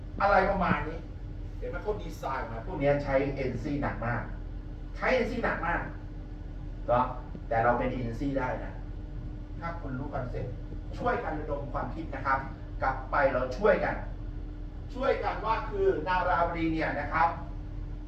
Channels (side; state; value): both; identical; correlation 1.00